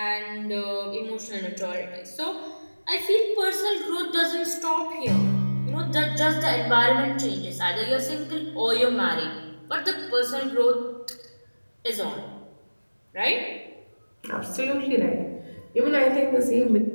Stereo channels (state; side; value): inverted; both; correlation -1.00